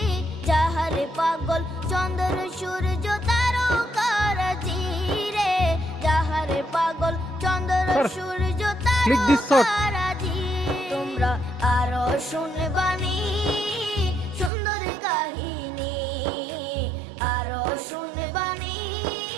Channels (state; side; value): drops out; left; at 14.5 s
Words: যাহার পাগল চন্দ্র সূর্য তারকারাজি রে, যাহার পাগল চন্দ্র সূর্য তারকারাজি। তোমরা আরো শুনবা